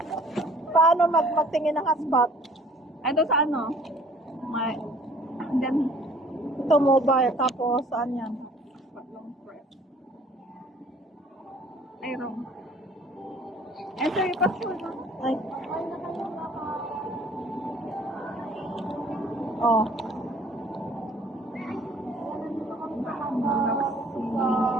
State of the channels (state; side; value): normal; both; correlation 0.54